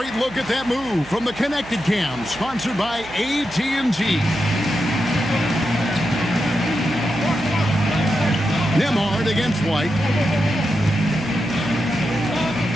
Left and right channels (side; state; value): right; noise; hum, 19 dB below the sound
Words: look at that move from the Connected Cam, sponsored by AT&T. Nembhard against White.